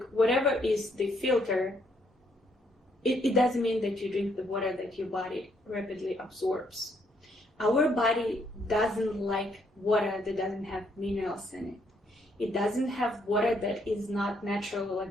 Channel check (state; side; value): normal; both; correlation 0.71